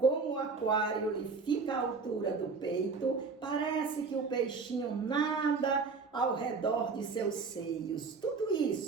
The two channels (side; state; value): left; quieter; 4.7 dB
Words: o aquário lhe fica à altura do peito, parece que o peixinho nada ao redor de seus seios. Tudo